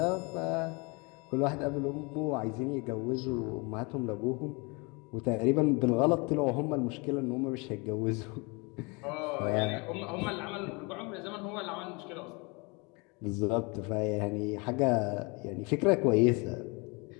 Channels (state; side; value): quieter; right; 29.2 dB